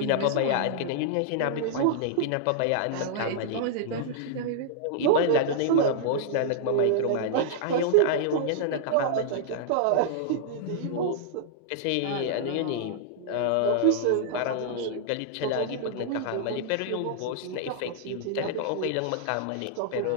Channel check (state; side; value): different; both; correlation -0.01